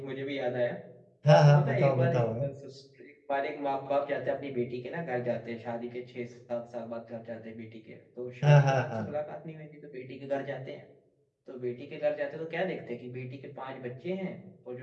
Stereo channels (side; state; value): both; identical; correlation 1.00